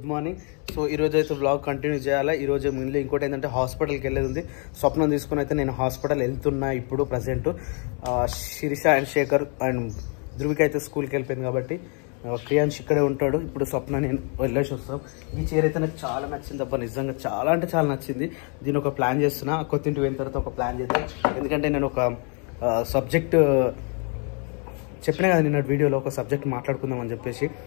మార్నింగ్. సో ఈ రోజు అయితే వ్లాగ్ కంటిన్యూ చేయాలి. ఈ రోజు ముందు ఇంకోటి ఏంటంటే హాస్పిటల్కి వెళ్ళేది ఉంది. స్వప్నం తీసుకుని అయితే నేను హాస్పిటల్ వెళ్తున్నా. ఇప్పుడు present Sirisha and Shekhar and Dhruvika అయితే స్కూల్కి వెళ్ళిపోయింది కాబట్టి క్రియాన్స్ ఇక్కడే ఉంటాడు. ఇప్పుడు స్వప్న నేను వెళ్ళేసి వస్తాం. ఈ చీర అయితే నాకు చాలా నచ్చింది అబ్బా, నిజంగా చాలా అంటే చాలా నచ్చింది. దీని ఒక ప్లాన్ చేస్తున్నా, కొత్తింటి వెళ్ళిన తర్వాత ఒక ప్లాన్ చేద్దాం. ఎందుకంటే నేను ఒక సబ్జెక్ట్ చెప్పినా కదా నిన్న వీడియోలో, ఒక సబ్జెక్ట్ మాట్లాడుకుందాం అని చెప్పేసి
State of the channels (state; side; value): quieter; right; 37.7 dB